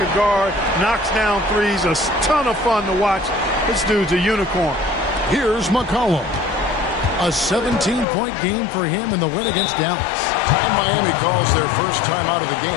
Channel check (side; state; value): right; drops out; at 8.1 s